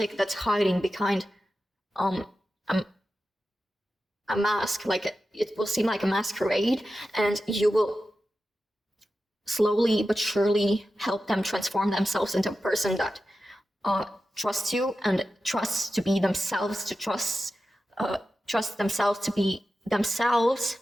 that's hiding behind a mask, like it will seem like a masquerade, and you will slowly but surely help them transform themselves into a person that trusts you and trusts to be themselves, to trust themselves to be themselves.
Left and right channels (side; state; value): both; normal; correlation 0.92